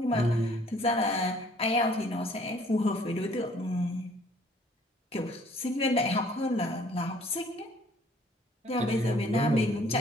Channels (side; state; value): both; normal; correlation 0.58